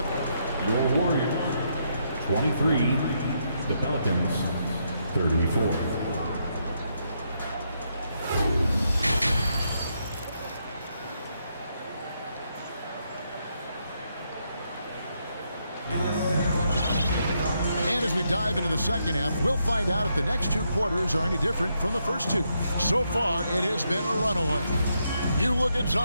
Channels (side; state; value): both; inverted; correlation -0.78